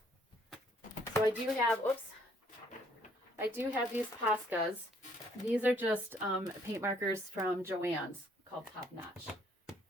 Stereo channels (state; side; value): normal; both; correlation 0.64